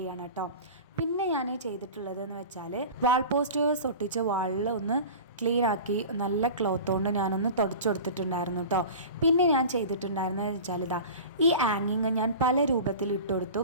ചെയ്യണം കേട്ടോ. പിന്നെ ഞാൻ ചെയ്തിട്ടുള്ളതെന്ന് വെച്ചാൽ വാൾ പോസ്റ്റേഴ്സ് ഒട്ടിച്ച വാളിൽ ഒന്ന് ക്ലീൻ ആക്കി നല്ല ക്ലോത്ത് കൊണ്ട് ഞാനൊന്ന് തുടച്ചു കൊടുത്തിട്ടുണ്ടായിരുന്നു കേട്ടോ. പിന്നെ ഞാൻ ചെയ്തിട്ടുണ്ടായിരുന്നത് വെച്ചാൽ ഈ ആങ്ങിങ് ഞാൻ പല രൂപത്തിൽ ഇട്ട് കൊടുത്തു.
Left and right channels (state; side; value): inverted; both; correlation -0.35